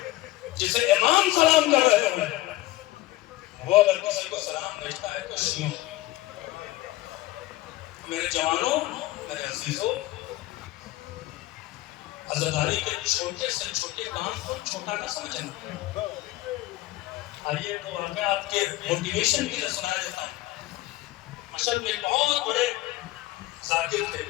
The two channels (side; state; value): right; quieter; 17.6 dB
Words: جسے امام سلام کر رہے ہیں. وہ اگر کسی کو سلام بھیجتا ہے تو شیعوں. میرے جوانوں، میرے عزیزوں، عزاداری کے چھوٹے سے چھوٹے کام کو چھوٹا نہ سمجھنا۔ آئیے تو میں آپ کے موٹیویشن کے لیے سنا دیتا ہوں۔ مشہد میں بہت بڑے ذاکر تھے،